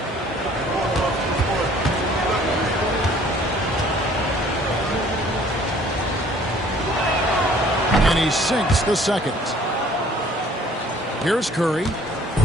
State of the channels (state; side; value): normal; both; correlation 0.56